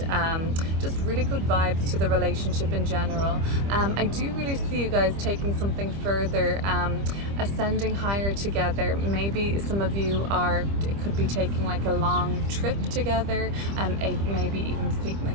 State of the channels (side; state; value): left; late; 25 ms